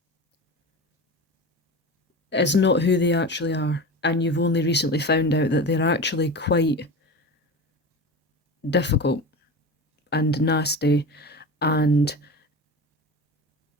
is not who they actually are, and you've only recently found out that they're actually quite difficult and nasty, and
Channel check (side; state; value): both; normal; correlation 0.29